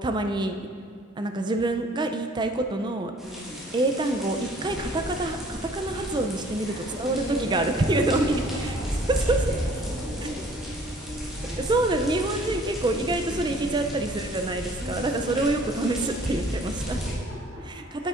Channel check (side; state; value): both; normal; correlation 0.55